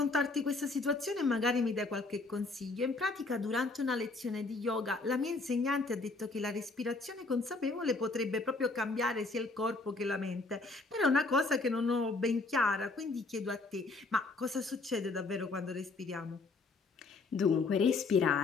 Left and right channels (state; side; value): quieter; right; 3.5 dB